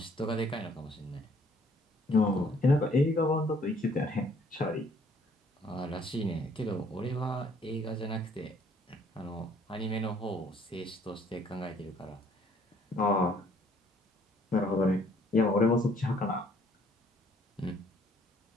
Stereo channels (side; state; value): both; normal; correlation 0.62